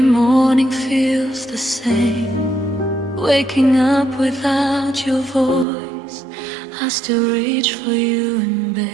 morning feels the same, waking up without your voice. I still reach for you in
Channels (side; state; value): left; drops out; at 5.7 s